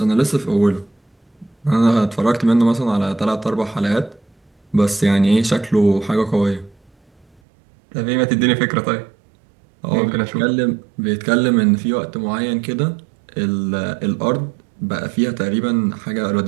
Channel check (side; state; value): left; drops out; at 7.4 s